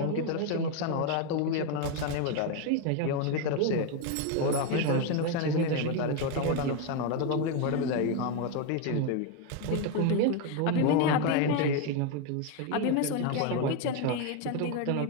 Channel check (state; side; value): different; both; correlation 0.02